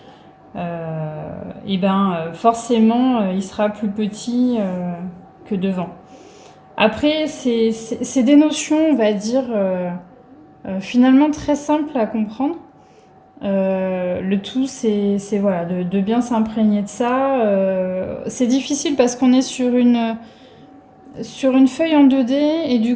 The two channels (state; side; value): identical; both; correlation 1.00